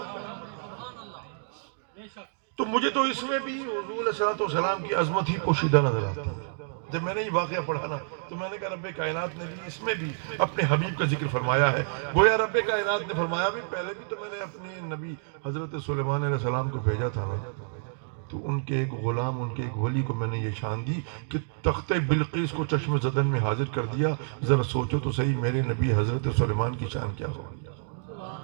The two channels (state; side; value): silent; left; digital silence